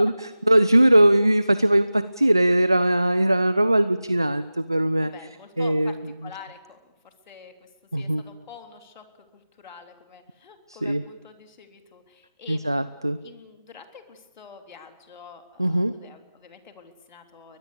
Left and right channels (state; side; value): inverted; both; correlation -0.97